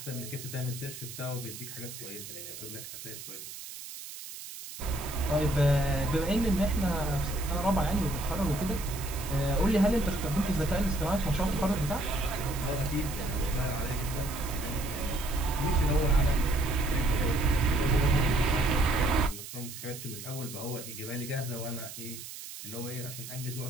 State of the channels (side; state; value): right; noise; hiss, 11 dB below the sound